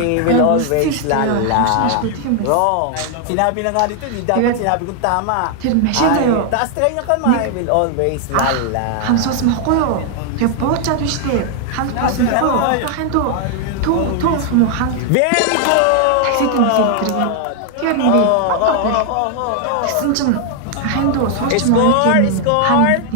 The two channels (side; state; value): both; different; correlation 0.00